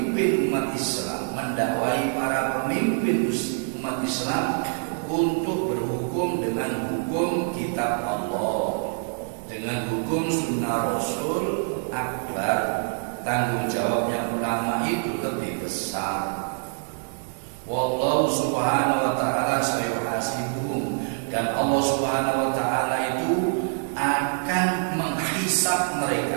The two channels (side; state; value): left; silent; 61 dB below the other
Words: umat Islam, mendakwai para pemimpin umat Islam untuk berhukum dengan hukum kitab Allah, dengan hukum sunnah Rasul akbar. Tanggung jawabnya ulama itu lebih besar. Wallahu subhanahu wa ta'ala sayuhasibuhum. Dan Allah subhanahu wa ta'ala itu akan menghisab